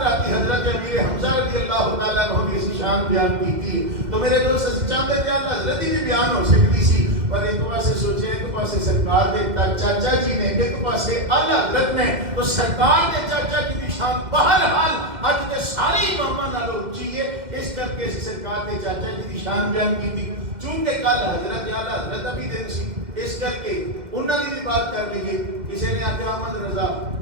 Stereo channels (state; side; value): late; left; 2.1 ms